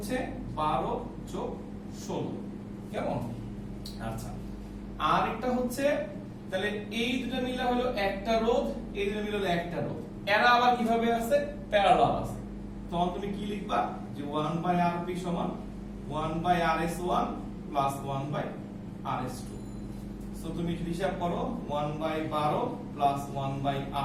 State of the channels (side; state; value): both; identical; correlation 1.00